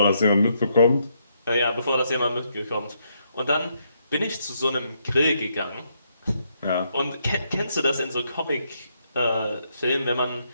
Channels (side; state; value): both; inverted; correlation -0.76